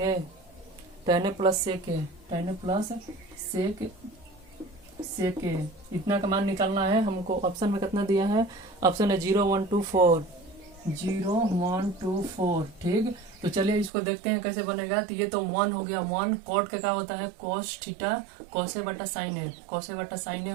tan A plus sec A. इतना का मान निकालना है हमको। Option में कितना दिया है? ऑप्शन है 0 1 2 4, 0 1 2 4। ठीक, तो चलिए इसको देखते हैं कैसे बनेगा। तो ये तो 1 हो गया। 1 कॉट का क्या होता है? कॉस थीटा कॉसे बटा साइन ए, कॉसे बटा साइन ए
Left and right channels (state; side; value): drops out; left; at 13.9 s